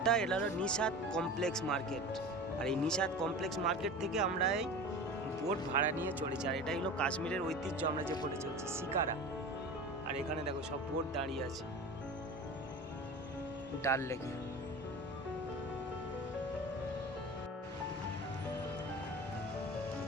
এটা হলো নিশাদ কমপ্লেক্স মার্কেট। আর এই নিশাদ কমপ্লেক্স মার্কেট থেকে আমরা এই বোট ভাড়া নিয়ে চলেছি। আর এটাই হলো কাশ্মীরের ঐতিহ্য, আমরা যে বোটে চলছি শিকারা। আর এখানে দেখো সব বোট দাঁড়িয়ে আছে ডাল লেকে।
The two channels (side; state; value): both; normal; correlation 0.34